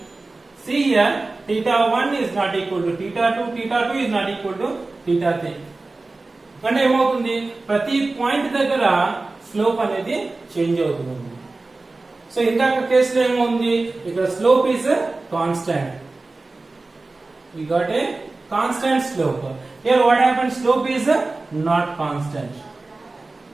See here, theta 1 is not equal to theta 2. Theta 2 is not equal to theta 3. అంటే ఏమవుతుంది, ప్రతి పాయింట్ దగ్గర స్లోప్ అనేది చేంజ్ అవుతుంది. సో ఇందాక కేసులో ఏమవుతుంది, ఇక్కడ slope is constant. We got a constant slope. Here what happens, slope is not constant.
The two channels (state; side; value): quieter; left; 3.3 dB